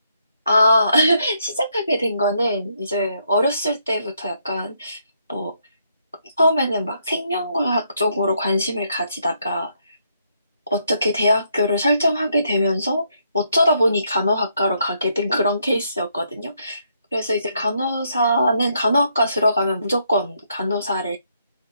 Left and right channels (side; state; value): both; inverted; correlation -0.75